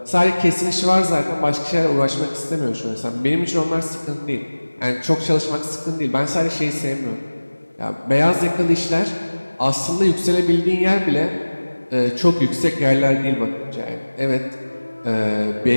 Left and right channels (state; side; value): inverted; both; correlation -1.00